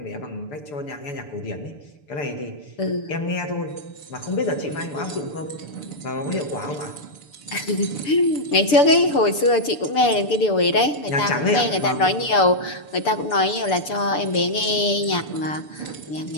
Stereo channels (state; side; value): late; right; 6.9 ms